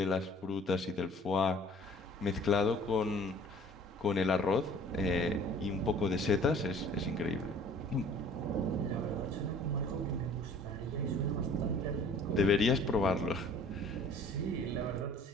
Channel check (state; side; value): normal; both; correlation 0.51